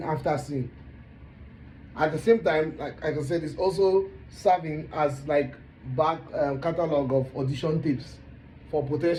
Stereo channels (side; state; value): both; identical; correlation 1.00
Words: after scene. At the same time, like I said, it's also serving as like back catalog of audition tips for